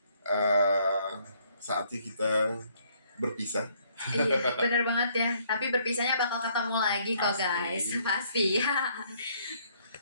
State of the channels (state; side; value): inverted; both; correlation -0.66